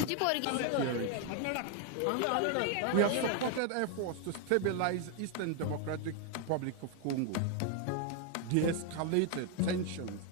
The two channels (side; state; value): both; different; correlation 0.01